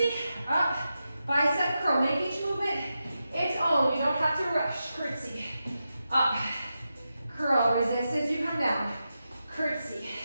Up. Bicep curl. Make each movement its own. You don't have to rush. Curtsy. Up. Curl. Resist as you come down. Curtsy.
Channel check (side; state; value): both; inverted; correlation -0.89